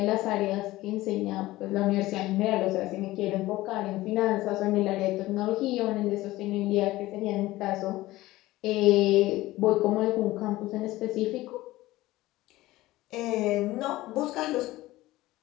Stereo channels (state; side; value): quieter; right; 17.6 dB